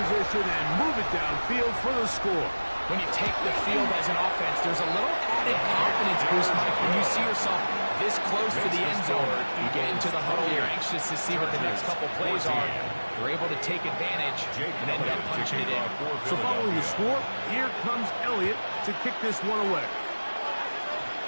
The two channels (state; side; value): inverted; both; correlation -1.00